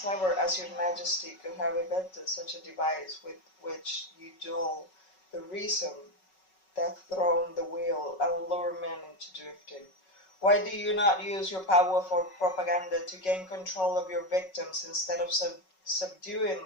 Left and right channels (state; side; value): late; right; 5.4 ms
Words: as your majesty could have invented such a device with which you dull the reason, that thrown the wheel, and lure men into drifting. Why do you not use your powerful propaganda to gain control of your victims instead of